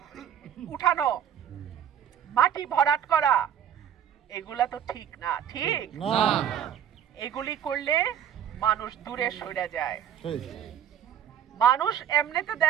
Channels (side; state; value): left; quieter; 9.4 dB